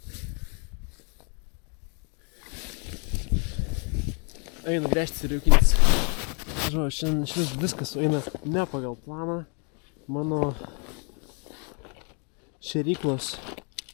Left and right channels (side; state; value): right; quieter; 37.9 dB